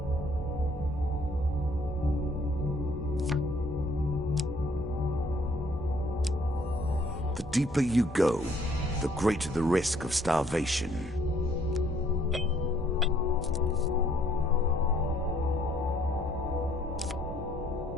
The deeper you go, the greater the risk of starvation.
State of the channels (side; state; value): both; normal; correlation 0.64